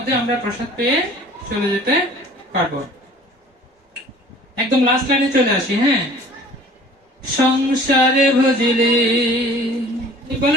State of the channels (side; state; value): both; normal; correlation 0.48